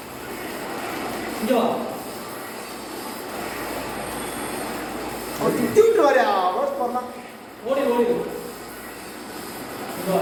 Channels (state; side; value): identical; both; correlation 1.00